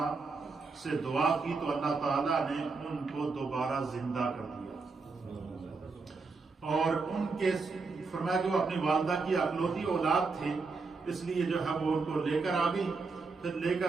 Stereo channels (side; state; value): left; quieter; 4.3 dB